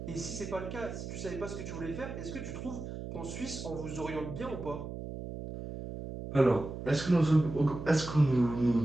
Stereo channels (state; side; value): noise; right; hum, 8 dB below the sound